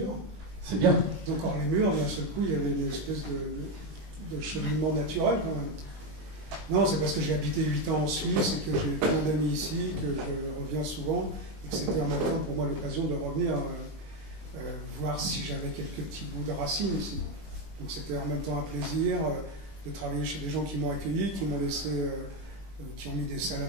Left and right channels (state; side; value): late; left; 20 ms